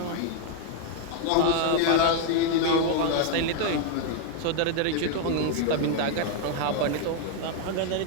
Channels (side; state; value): both; different; correlation 0.00